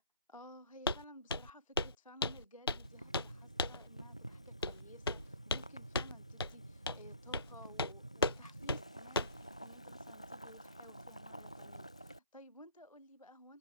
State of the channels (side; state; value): both; inverted; correlation -0.49